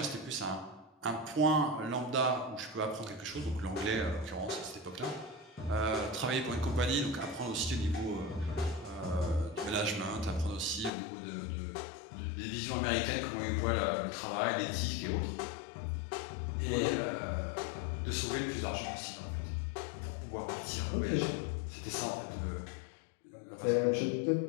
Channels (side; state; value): right; drops out; at 10.9 s